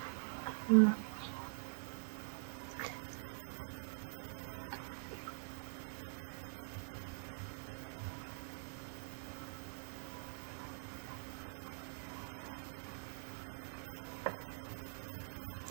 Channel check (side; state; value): left; silent; digital silence